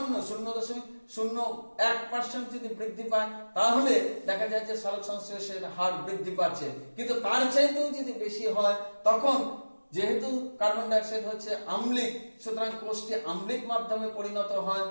0.01% যদি বৃদ্ধি পায় তাহলে দেখা যায় যে সালোক সংশ্লেষের হার বৃদ্ধি পাচ্ছে। কিন্তু তার চাইতেও যদি বেশি হয় তখন যেহেতু কার্বন ডাই অক্সাইড হচ্ছে আম্লিক, সুতরাং কোষটি আম্লিক মাধ্যমে পরিণত হয়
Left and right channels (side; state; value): both; inverted; correlation -1.00